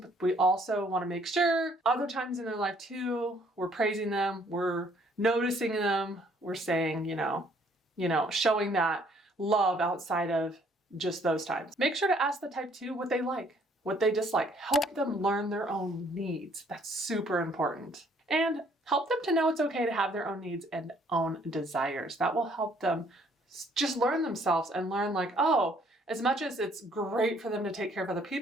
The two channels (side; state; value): both; normal; correlation 0.63